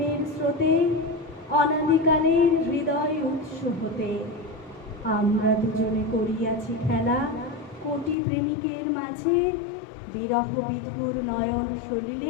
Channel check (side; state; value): right; drops out; at 8.2 s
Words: স্রোতে, অনাদিকালের হৃদয় উৎস হতে। আমরা দুজনে করিয়াছি খেলা কোটি প্রেমিকের মাঝে, বিরহ বিধুর নয়ন